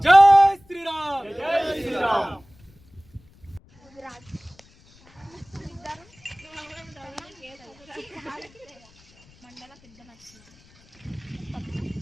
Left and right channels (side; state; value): left; noise; rumble, 29 dB below the sound